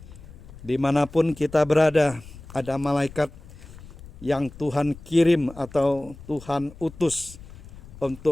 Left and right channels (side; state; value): left; noise; rumble, 18 dB below the sound